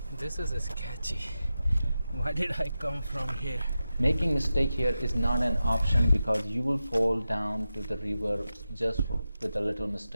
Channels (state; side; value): inverted; both; correlation -0.92